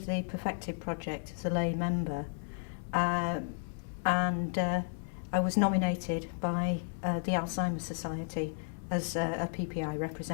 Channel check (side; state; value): right; silent; digital silence